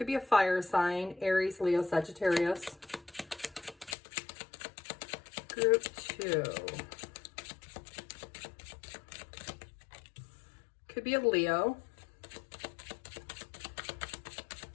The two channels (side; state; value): right; drops out; at 4.0 s